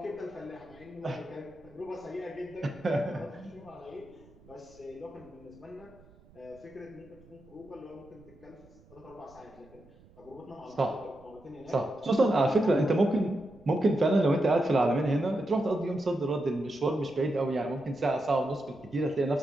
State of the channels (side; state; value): right; noise; rumble, 25 dB below the sound